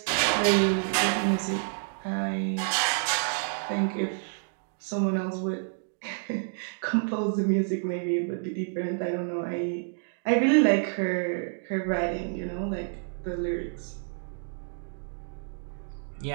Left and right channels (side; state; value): left; silent; digital silence